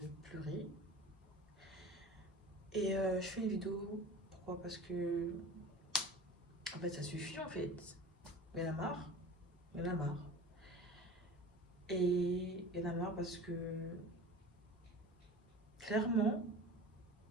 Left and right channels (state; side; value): normal; both; correlation 0.38